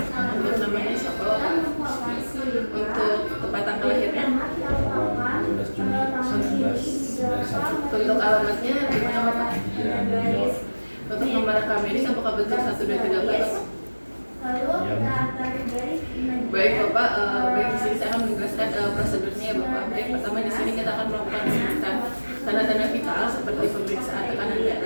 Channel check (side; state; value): both; inverted; correlation -1.00